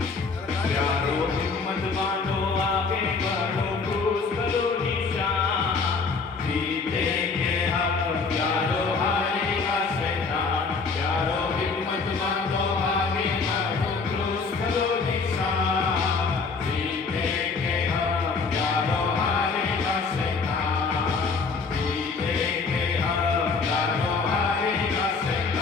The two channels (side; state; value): right; quieter; 4.6 dB